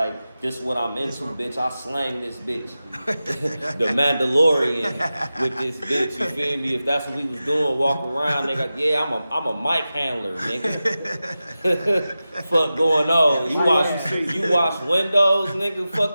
this what I'm into, bitch. I slang this bitch. The Mandalorian with this bitch, you feel me? If that's what we was doing, walk around, nigga, yeah, I'm a mic handler, nigga. Fuck going on? You wash windows, nigga?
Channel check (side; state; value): both; inverted; correlation -0.94